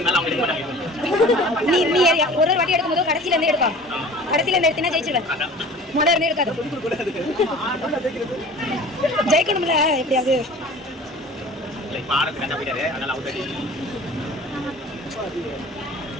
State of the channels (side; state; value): both; normal; correlation 0.43